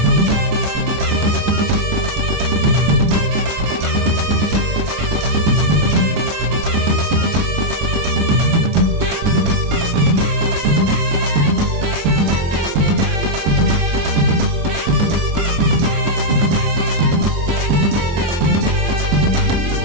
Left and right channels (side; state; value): left; late; 23 ms